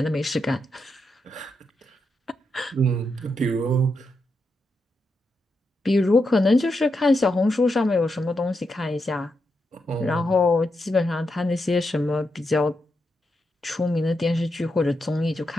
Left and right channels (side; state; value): both; normal; correlation 0.84